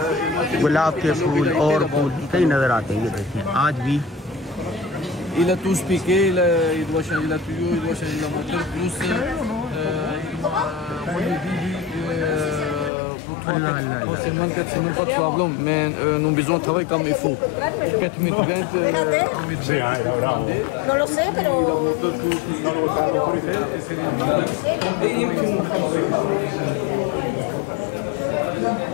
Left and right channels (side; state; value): right; drops out; at 12.9 s